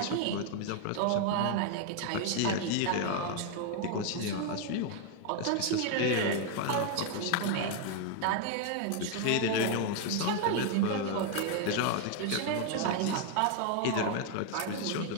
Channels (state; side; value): different; both; correlation 0.00